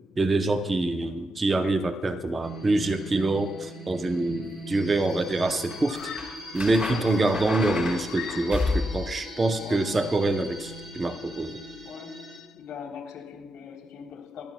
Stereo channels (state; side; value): normal; both; correlation 0.86